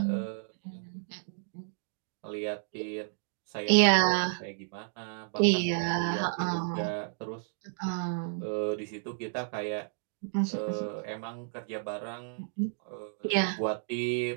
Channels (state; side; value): silent; left; digital silence